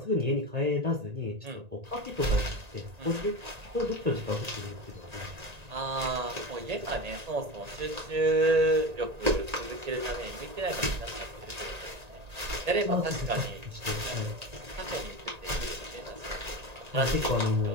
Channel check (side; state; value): left; late; 1.8 ms